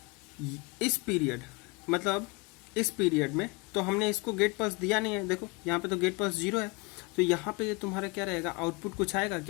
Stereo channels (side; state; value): right; quieter; 26.7 dB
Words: इस पीरियड मतलब इस पीरियड में तो हमने इसको गेट पल्स दिया नहीं है, देखो यहाँ पे तो गेट पल्स 0 है, तो यहाँ पे ये तुम्हारा क्या रहेगा, आउटपुट कुछ आएगा